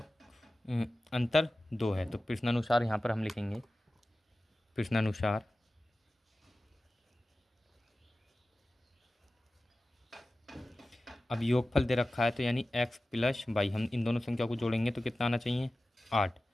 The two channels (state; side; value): normal; both; correlation 0.95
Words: अंतर 2 है। तो प्रश्नानुसार यहाँ पर हम लिखेंगे, प्रश्नानुसार अब योगफल दे रखा है, तो यानी x + y, हम इन दोनों संख्या को जोड़ेंगे तो कितना आना चाहिए 8,